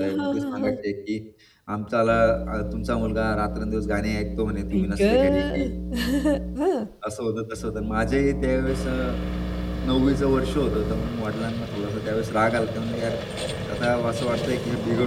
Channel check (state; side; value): identical; both; correlation 1.00